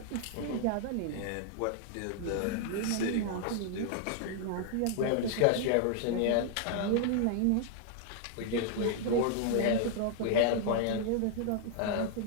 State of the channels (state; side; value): different; both; correlation 0.00